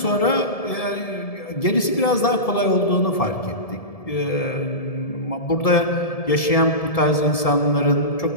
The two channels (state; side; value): late; right; 1.7 ms